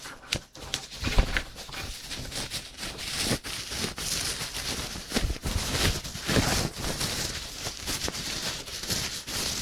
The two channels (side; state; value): both; identical; correlation 1.00